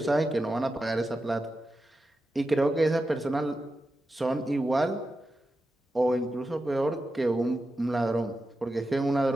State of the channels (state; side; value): normal; both; correlation 0.90